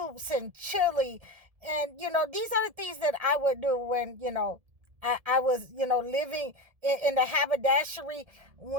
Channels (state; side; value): late; left; 1.7 ms